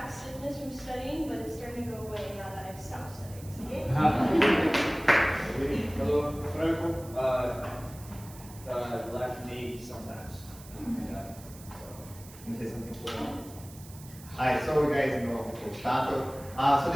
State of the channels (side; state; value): right; noise; hiss, 19 dB below the sound